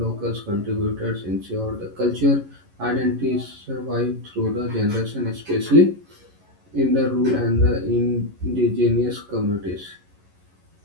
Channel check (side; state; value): left; late; 11 ms